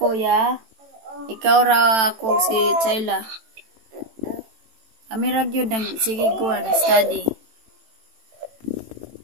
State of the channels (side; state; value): left; late; 18 ms